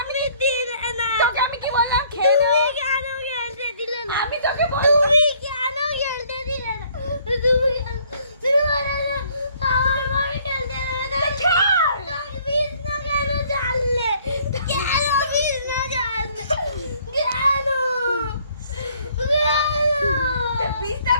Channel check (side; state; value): both; inverted; correlation -0.61